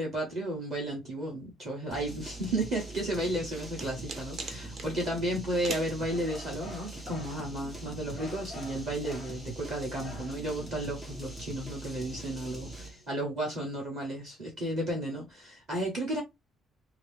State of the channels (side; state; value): both; normal; correlation 0.57